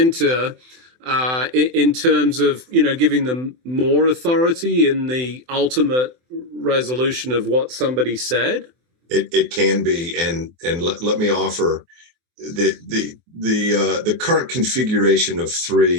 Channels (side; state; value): left; late; 24 ms